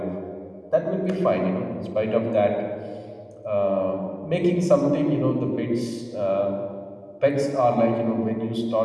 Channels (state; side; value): identical; both; correlation 1.00